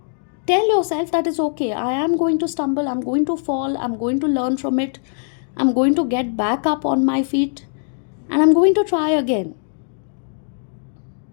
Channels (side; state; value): right; silent; digital silence